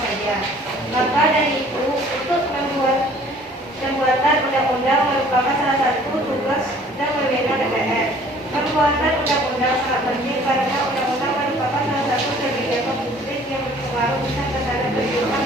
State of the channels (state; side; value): normal; both; correlation 0.53